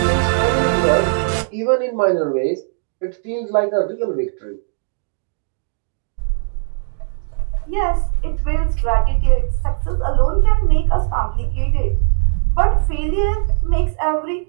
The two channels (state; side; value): silent; left; digital silence